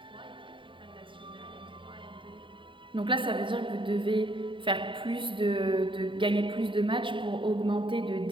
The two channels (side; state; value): left; late; 0.24 ms